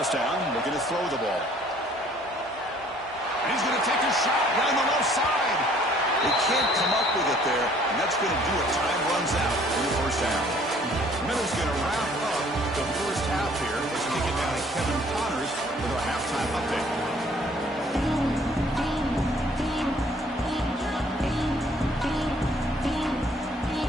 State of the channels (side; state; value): both; normal; correlation 0.58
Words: down, looking to throw the ball. And he's going to take a shot down the left side. They can't come up with it there, and that's going to do it. Time runs out in the first down. Miller's going to wrap up the first half here as we get down to Kevin Connors with our halftime update.